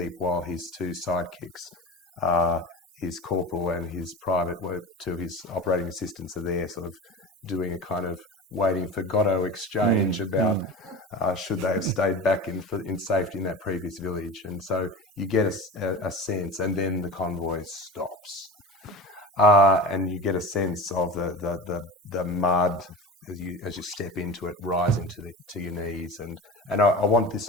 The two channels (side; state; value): both; normal; correlation 0.31